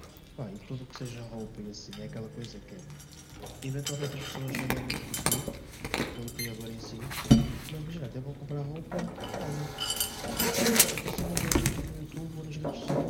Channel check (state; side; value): identical; both; correlation 1.00